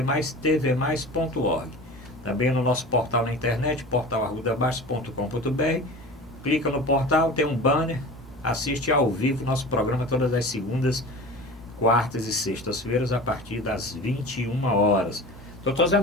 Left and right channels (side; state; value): both; normal; correlation 0.35